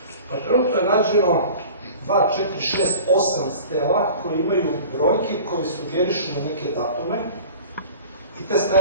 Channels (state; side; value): inverted; both; correlation -0.41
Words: Pa trenutno je nađeno 2, 4, 6, 8 stela koji imaju brojke koji sugerišu na neke datume i te